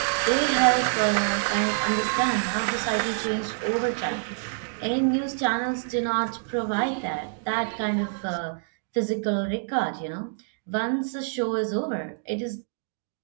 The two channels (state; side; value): silent; left; digital silence